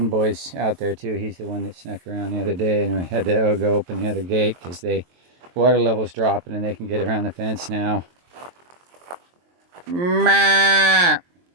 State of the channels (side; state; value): left; late; 23 ms